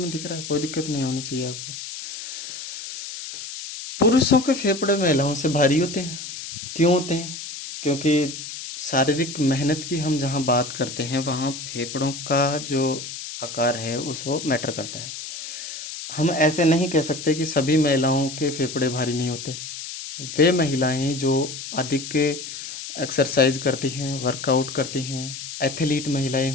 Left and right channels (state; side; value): noise; left; hiss, 9 dB below the sound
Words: दिख रहा है, कोई दिक्कत नहीं होनी चाहिए आपको। पुरुषों के फेफड़े महिलाओं से भारी होते हैं। क्यों होते हैं? क्योंकि शारीरिक मेहनत की हम जहाँ बात करते हैं वहाँ फेफड़ों का जो आकार है उसको मैटर करता है। हम ऐसे नहीं कह सकते कि सभी महिलाओं के फेफड़े भारी नहीं होते। वे महिलाएं जो अधिक एक्सरसाइज करती हैं, वर्कआउट करती हैं, एथलीट महिलाएं